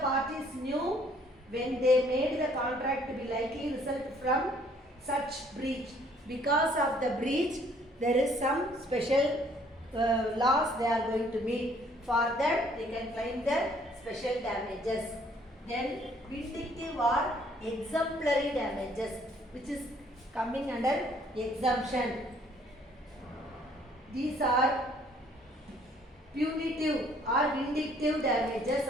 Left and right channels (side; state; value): both; normal; correlation 0.61